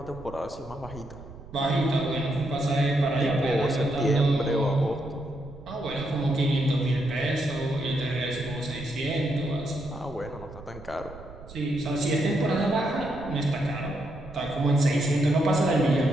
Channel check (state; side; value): noise; right; rumble, 16 dB below the sound